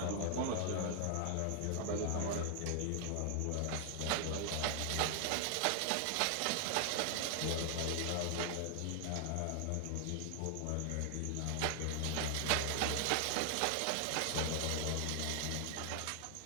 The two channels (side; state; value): both; different; correlation 0.00